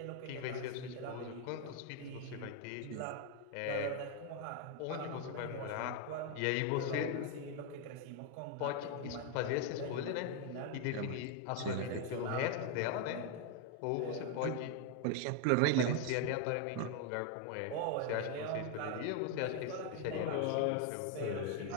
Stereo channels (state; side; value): different; both; correlation 0.01